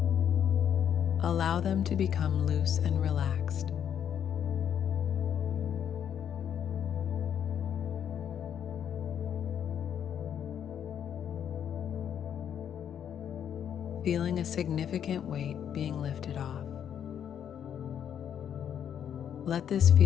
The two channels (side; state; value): right; quieter; 9.0 dB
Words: Allow them to become loose and relaxed. Feeling a significant weight being lifted off. Let this